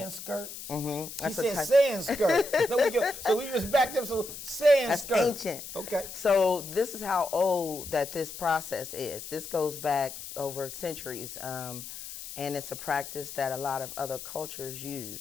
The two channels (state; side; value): noise; left; hiss, 11 dB below the sound